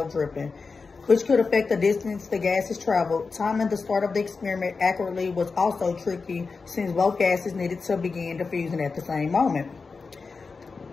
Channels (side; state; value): right; quieter; 4.5 dB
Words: dripping, which could affect the distance the gases traveled. Timing the start of the experiment accurately was also tricky since both gases needed to begin diffusing at the same moment.